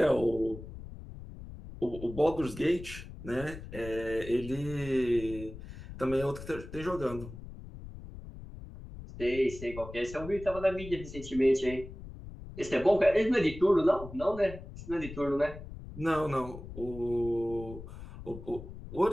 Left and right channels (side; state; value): left; noise; rumble, 13 dB below the sound